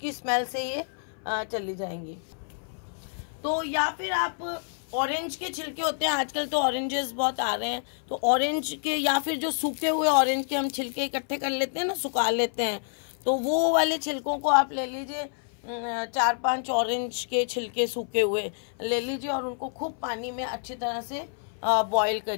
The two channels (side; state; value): right; silent; 58 dB below the other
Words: स्मेल से ये चली जाएंगी। तो या फिर आप ऑरेंज के छिलके होते हैं, आजकल तो ऑरेंजेस बहुत आ रहे हैं, तो ऑरेंज के या फिर जो सूखे हुए ऑरेंज के हम छिलके इकट्ठे कर लेते हैं ना, सुखा लेते हैं, तो वो वाले छिलकों को आप ले लीजिए, 4-5 ऑरेंज के छिलके सूखे हुए ले लीजिए, और उनको खूब पानी में अच्छी तरह से बॉईल